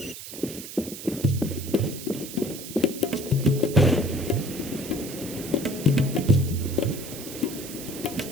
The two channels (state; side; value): noise; right; hiss, 11 dB below the sound